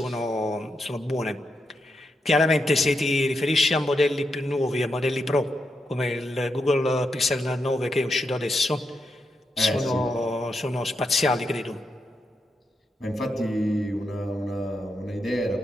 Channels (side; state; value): both; normal; correlation 0.84